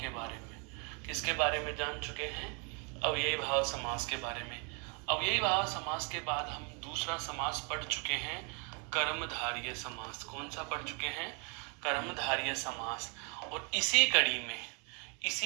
बारे में। किसके बारे में जान चुके हैं? अव्ययी भाव समास के बारे में। अव्ययी भाव समास के बाद हम दूसरा समास पढ़ चुके हैं, कर्मधारय समास। कौन सा पढ़ चुके हैं? कर्मधारय समास। और इसी कड़ी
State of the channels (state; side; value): quieter; left; 35.4 dB